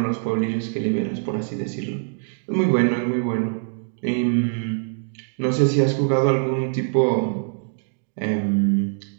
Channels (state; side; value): silent; left; digital silence